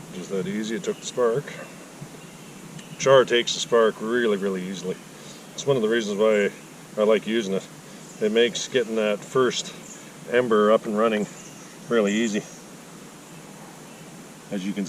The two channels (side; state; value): both; identical; correlation 1.00